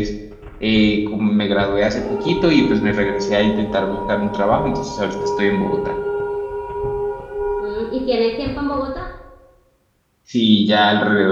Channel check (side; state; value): both; identical; correlation 1.00